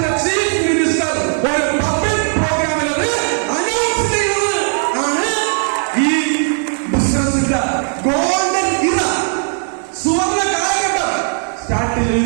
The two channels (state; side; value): silent; left; 56 dB below the other